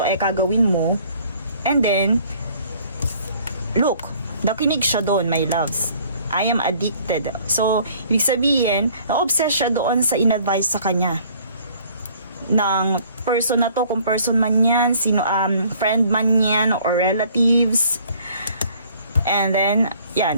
ay kagawin mo. And then, look, nakinig siya doon, my loves. I am addicted. So, ibig sabihin, na-obsess siya doon sa in-advise sa kanya ng person na to, kung person man yan, friend man yan, or relatives. And then,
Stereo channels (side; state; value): both; inverted; correlation -0.57